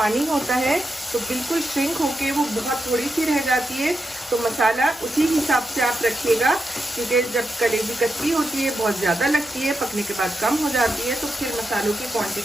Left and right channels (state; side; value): normal; both; correlation 0.87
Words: होता है, तो बिल्कुल श्रिंक होके वो बहुत थोड़ी सी रह जाती है। तो मसाला उसी हिसाब से आप रखिएगा, क्योंकि जब कलेजी कच्ची होती है बहुत ज़्यादा लगती है, पकने के बाद कम हो जाती है, तो फिर मसालों की